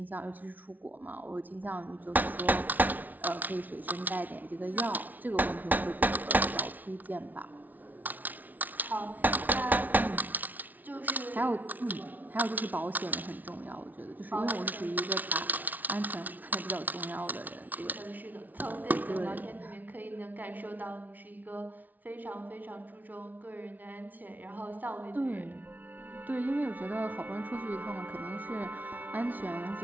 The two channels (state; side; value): late; left; 0.079 ms